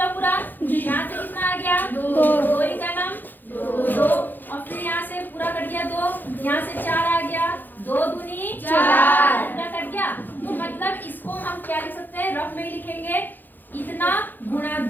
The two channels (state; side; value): late; right; 0.089 ms